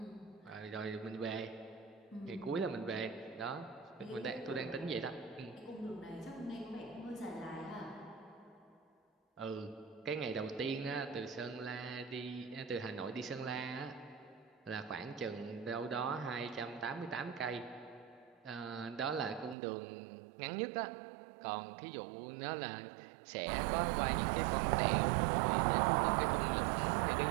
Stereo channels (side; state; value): left; drops out; at 19.6 s